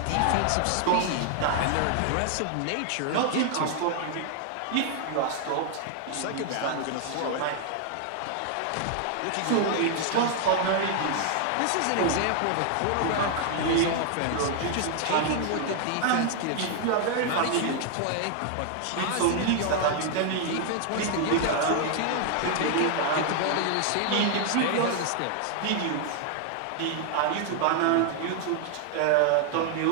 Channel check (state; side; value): different; both; correlation 0.00